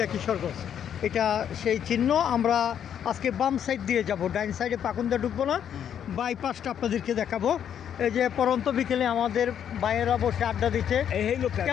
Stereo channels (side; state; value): right; quieter; 9.1 dB